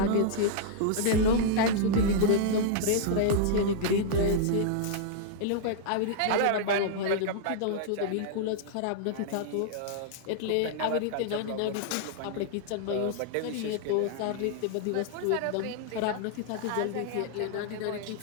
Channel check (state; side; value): different; both; correlation -0.01